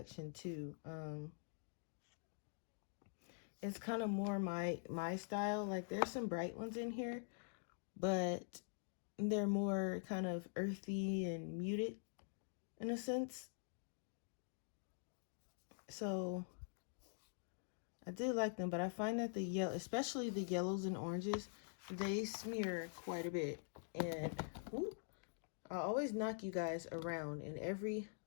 too. It's kind of more my style. Like there's some bright ones in here, but they're more kind of earthy and muted in a sense. So I do like them, but I find that the yellow, especially the yellows and oranges, they smear quite a bit. And whoop, I always knock you guys around in every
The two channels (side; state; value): right; silent; digital silence